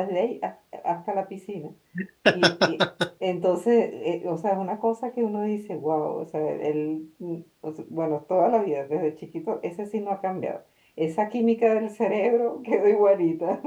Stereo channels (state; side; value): identical; both; correlation 1.00